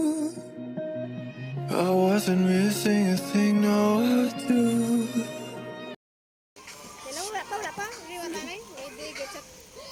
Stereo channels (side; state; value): both; identical; correlation 1.00